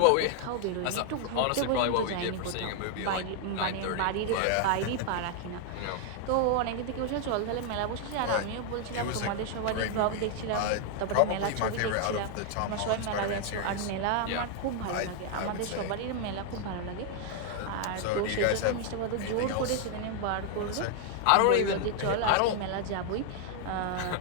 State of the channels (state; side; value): different; both; correlation 0.00